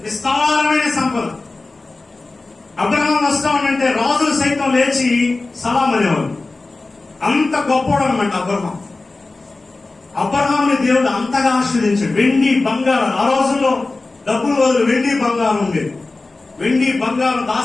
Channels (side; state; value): right; quieter; 3.4 dB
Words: విస్తారమైన సంపద. అబ్రహాం వస్తా ఉంటే రాజులు సైతం లేచి సలాం అనేవాళ్ళు. అంత గొప్పవాడు అనమాట అబ్రహాం. అబ్రహాంని దేవుడు అంతగా ఆశీర్వదించాడు. వెండి బంగారం, ఆ రోజుల్లో డబ్బులు బదులు వెండి బంగారం ఉండేది. వెండి బంగారం,